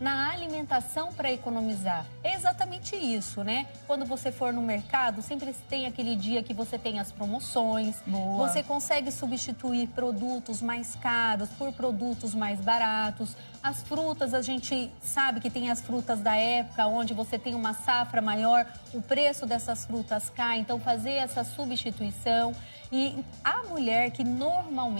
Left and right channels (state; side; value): inverted; both; correlation -1.00